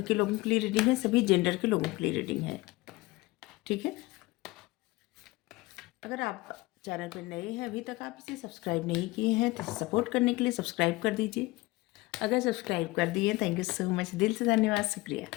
के लोगों के लिए रीडिंग है, सभी जेंडर के लोगों के लिए रीडिंग है, ठीक है। अगर आप चैनल पर नए हैं, अभी तक आप इसे सब्सक्राइब नहीं किए हैं, तो सपोर्ट करने के लिए सब्सक्राइब कर दीजिए। अगर सब्सक्राइब कर दिए, थैंक यू सो मच, दिल से धन्यवाद, शुक्रिया।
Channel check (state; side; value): quieter; right; 21.1 dB